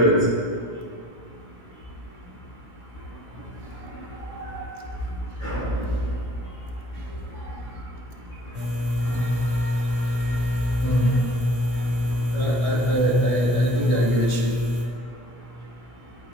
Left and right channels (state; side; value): late; right; 17 ms